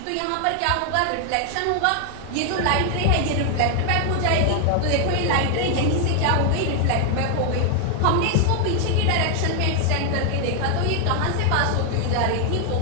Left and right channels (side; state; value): both; different; correlation 0.00